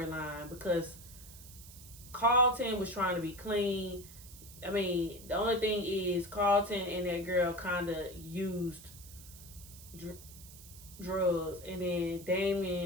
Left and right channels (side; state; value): right; noise; hiss, 17 dB below the sound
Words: because Carlton was trying to be clean. I mean, the only thing is Carlton and that girl kind of used drugs, and then